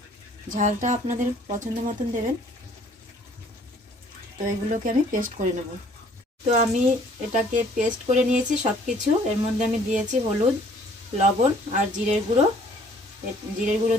ঝালটা আপনাদের পছন্দ মতন দেবেন। তো এগুলোকে আমি পেস্ট করে নেব। তো আমি এটাকে পেস্ট করে নিয়েছি সব কিছু। এর মধ্যে আমি দিয়েছি হলুদ, লবণ আর জিরের গুঁড়ো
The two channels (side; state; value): both; normal; correlation 0.58